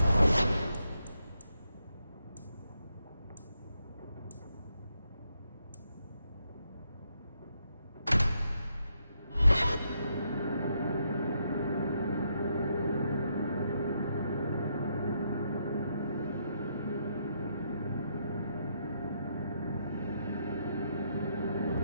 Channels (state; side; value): inverted; both; correlation -0.78